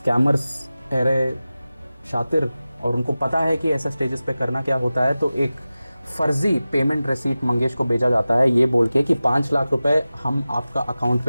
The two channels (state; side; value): inverted; both; correlation -0.96